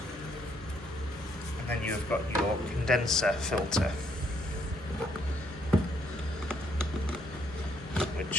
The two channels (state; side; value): normal; both; correlation 0.71